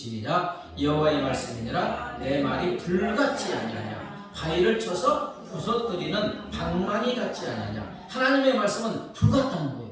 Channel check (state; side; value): identical; both; correlation 1.00